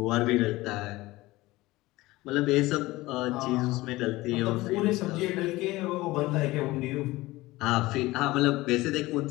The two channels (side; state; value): right; quieter; 19.3 dB